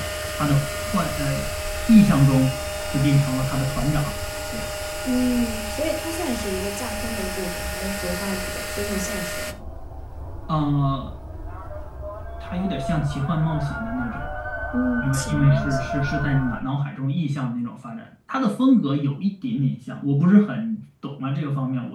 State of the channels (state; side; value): identical; both; correlation 1.00